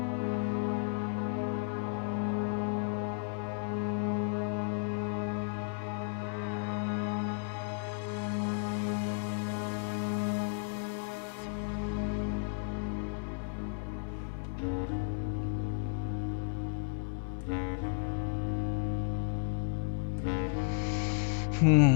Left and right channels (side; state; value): right; silent; digital silence